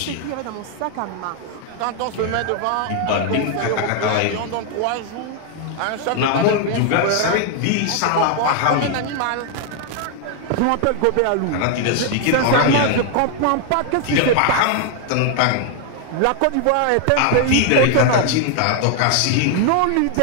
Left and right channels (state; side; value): different; both; correlation 0.00